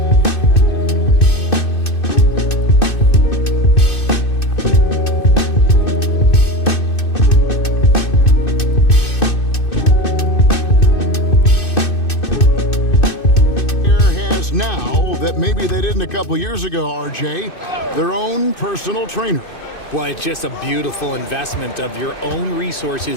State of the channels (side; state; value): right; late; 2.6 ms